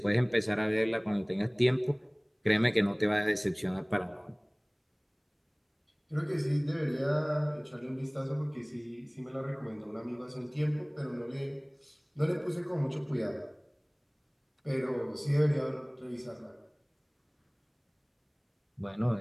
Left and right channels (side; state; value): both; identical; correlation 1.00